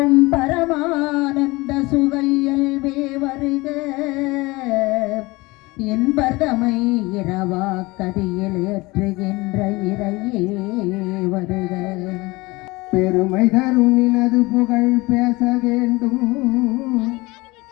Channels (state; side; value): quieter; right; 22.6 dB